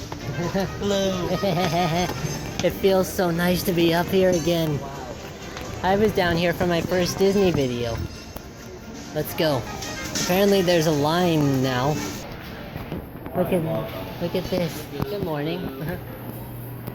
Hello. It feels so nice to be up here again. I was down here for my first Disney video. Let's go. Apparently there's a line now. Look at this. Good morning.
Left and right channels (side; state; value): both; identical; correlation 1.00